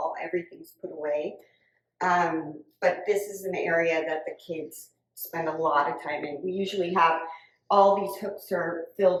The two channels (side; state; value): both; identical; correlation 1.00